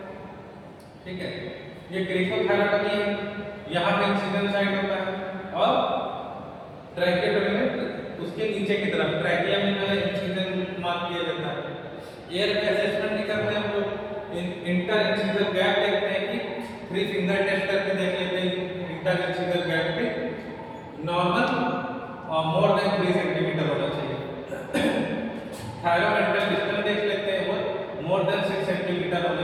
ठीक है। ये क्रीकोथायरॉयडोटमी है, यहाँ पे इंसिजन साइट होता है और ट्रैकियोटमी में उसके नीचे की तरफ ट्रैकिया में जो है इंसिजन मार्क किया जाता है। एयर असेसमेंट भी करते हैं हम लोग, इंटर इंसिजर गैप देखते हैं कि 3 फिंगर टेस्ट करके देख लेते हैं इंटर इंसिजर गैप पे नॉर्मल और मोर देन 3 सेंटीमीटर होना चाहिए। थायरोमेंटल डिस्टेंस देख लेते हैं, वो मोर देन 6 सेंटीमीटर होना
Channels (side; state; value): both; identical; correlation 1.00